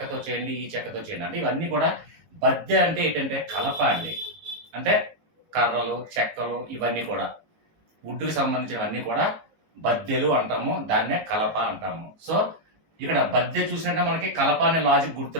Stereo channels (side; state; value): left; late; 19 ms